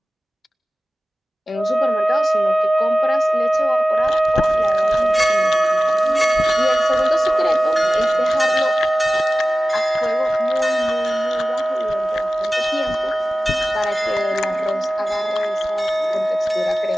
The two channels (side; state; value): both; normal; correlation 0.96